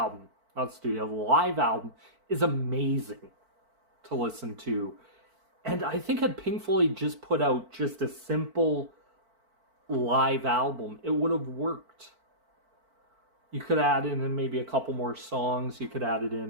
not studio, the live album is amazing to listen to. And I think had Pink Floyd just put out just a simple live album, it would have worked. You could add in maybe a couple more songs. You could add it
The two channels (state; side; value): late; left; 4.5 ms